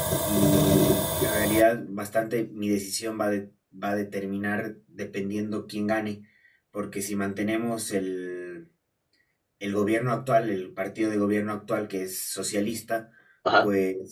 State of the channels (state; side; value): identical; both; correlation 1.00